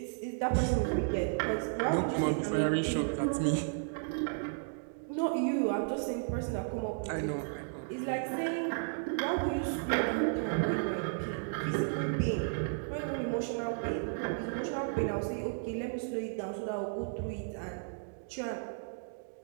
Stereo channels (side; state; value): left; silent; digital silence